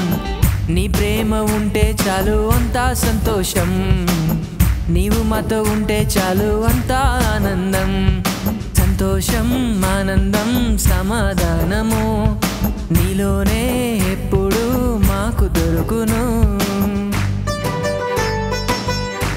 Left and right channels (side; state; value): both; identical; correlation 1.00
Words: నీ ప్రేమ ఉంటే చాలు అంతా సంతోషం నీవు మాతో ఉంటే చాలు అంతా ఆనందం సంతోషం ఆనందం సమాధానము నీలోనే ఎప్పుడు మాకు దొరుకును